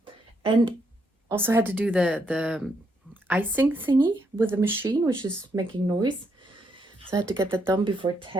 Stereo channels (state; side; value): normal; both; correlation 0.76